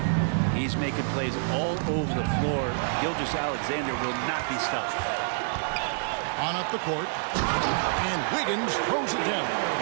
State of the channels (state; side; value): silent; left; digital silence